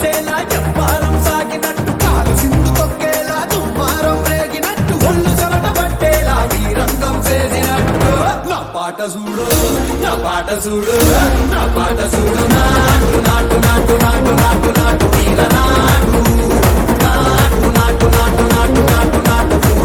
చెప్పారం సాగినట్టు కాలు సింధు తొక్కేలా దుమ్మారం రేగినట్టు ఒళ్ళు చెమట పట్టేలా వీరంగం చేసినట్టు నా పాట చూడు నా పాట చూడు నా పాట చూడు నాటు నాటు నాటు నాటు నాటు నాటు తీర నాటు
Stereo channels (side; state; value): both; identical; correlation 1.00